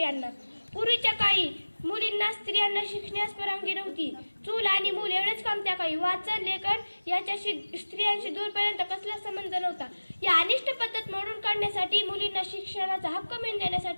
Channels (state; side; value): inverted; both; correlation -1.00